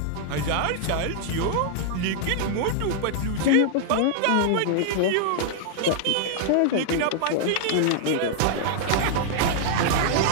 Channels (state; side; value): different; both; correlation -0.01